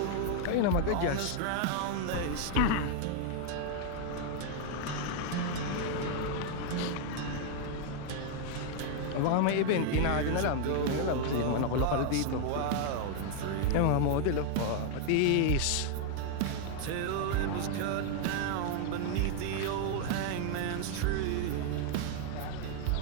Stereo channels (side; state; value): both; different; correlation 0.00